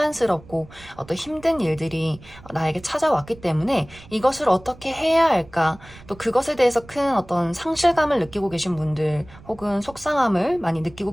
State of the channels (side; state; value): right; noise; rumble, 21 dB below the sound